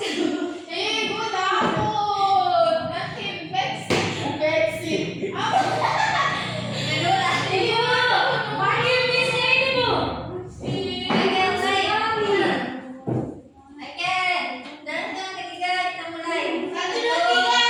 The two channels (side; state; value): both; identical; correlation 1.00